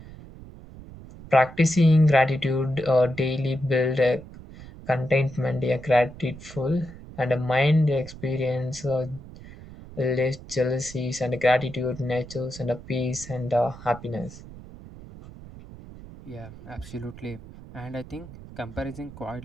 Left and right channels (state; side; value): noise; right; rumble, 16 dB below the sound